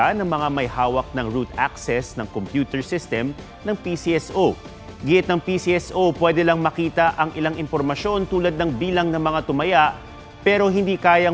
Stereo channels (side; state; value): both; identical; correlation 1.00